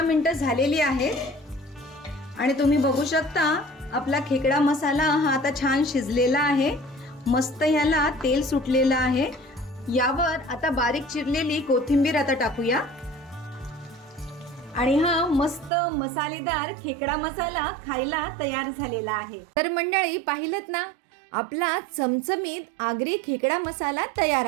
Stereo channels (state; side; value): drops out; left; at 15.7 s